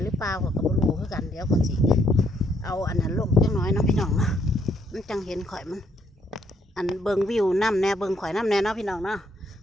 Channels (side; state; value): both; normal; correlation 0.71